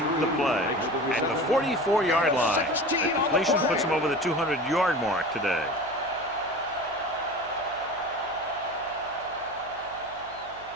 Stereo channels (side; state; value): right; noise; hum, 24 dB below the sound